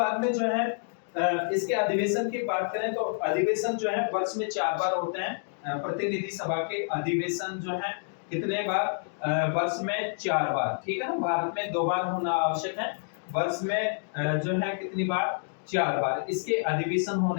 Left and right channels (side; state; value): right; silent; digital silence